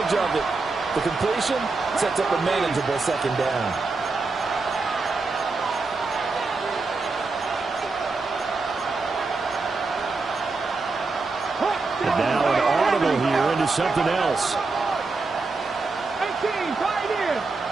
of it. The completion sets up a manageable 2nd down. And now an audible here into something else. 18, Pioneer.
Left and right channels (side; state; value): left; quieter; 3.9 dB